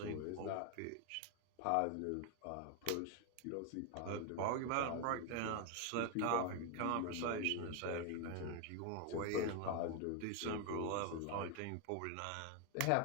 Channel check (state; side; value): different; both; correlation 0.01